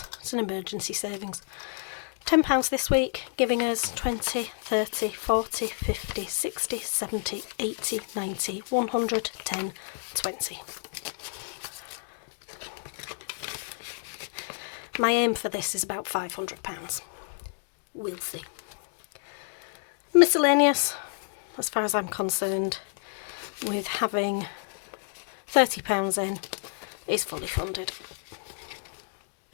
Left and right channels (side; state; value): right; silent; 58 dB below the other